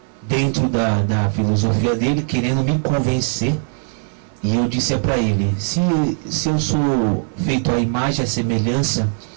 dentro da filosofia dele, querendo me convencer, e eu disse para ele: se eu sou feito à imagem e à semelhança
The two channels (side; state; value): left; silent; 61 dB below the other